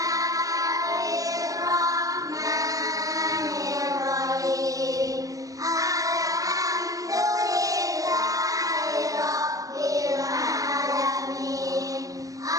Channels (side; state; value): left; late; 0.17 ms